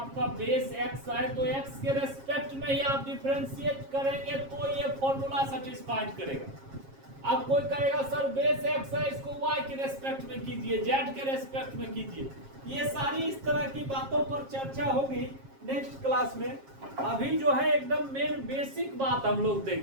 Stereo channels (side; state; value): left; late; 7.4 ms